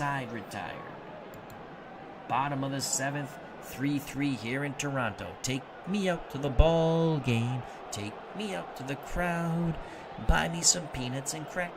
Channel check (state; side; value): identical; both; correlation 1.00